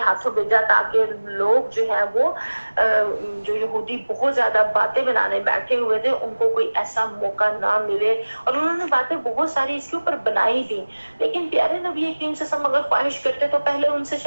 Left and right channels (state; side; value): inverted; both; correlation -1.00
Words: ہاتھوں بھیجا تاکہ لوگ جو ہے وہ جو یہودی بہت زیادہ باتیں بنانے بیٹھے ہوئے تھے ان کو کوئی ایسا موقع نہ ملے، اور انہوں نے باتیں بہت ساری اس کے اوپر بنائی بھی۔ لیکن پیارے نبی کریم صلی اللہ علیہ وسلم اگر خواہش کرتے تو پہلے ان سے